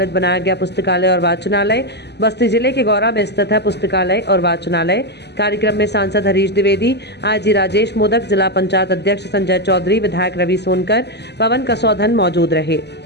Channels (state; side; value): late; right; 0.49 ms